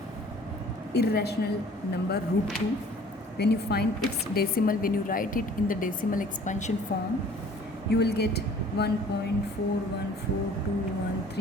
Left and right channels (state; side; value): normal; both; correlation 0.51